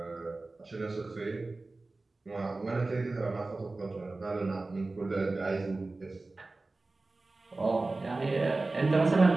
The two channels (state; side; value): quieter; left; 3.3 dB